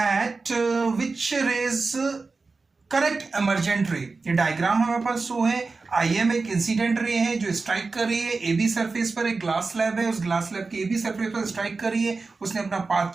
which rays correct emergent ray। ये diagram हमारे पास show है। IM एक incident ray है जो स्ट्राइक कर रही है AB सरफेस पर। एक ग्लास स्लैब है, उस ग्लास स्लैब के AB सरफेस पर स्ट्राइक कर रही है। उसने अपना पाथ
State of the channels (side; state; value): left; quieter; 4.0 dB